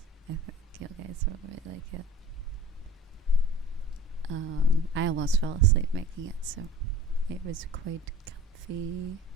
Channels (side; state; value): both; normal; correlation 0.42